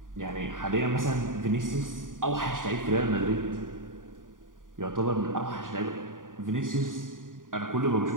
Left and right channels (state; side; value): late; left; 0.89 ms